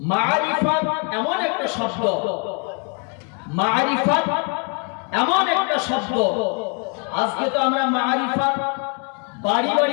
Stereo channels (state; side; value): quieter; right; 36.2 dB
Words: মারিফাত এমন একটা শব্দ, মারিফাত এমন একটা শব্দ, আজকে তো আমরা মারিফাত বাড়ি